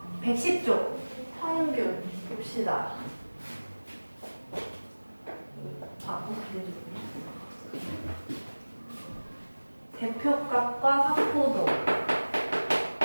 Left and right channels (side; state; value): both; inverted; correlation -1.00